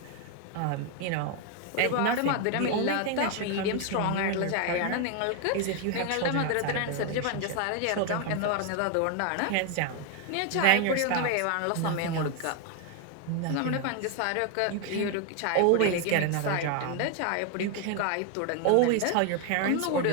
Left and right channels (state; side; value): different; both; correlation 0.01